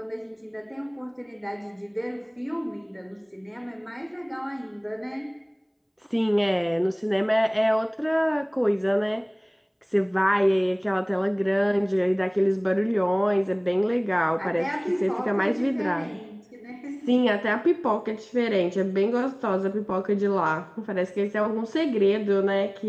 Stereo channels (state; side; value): identical; both; correlation 1.00